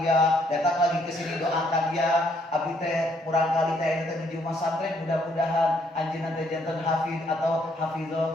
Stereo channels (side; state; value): both; normal; correlation 0.69